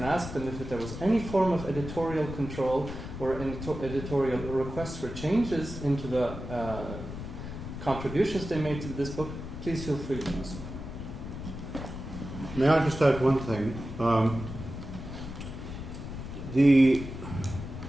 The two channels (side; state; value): left; noise; rumble, 9 dB below the sound